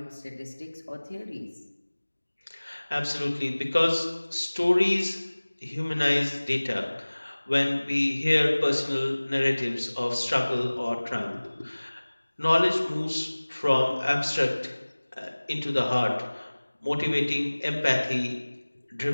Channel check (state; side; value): inverted; both; correlation -1.00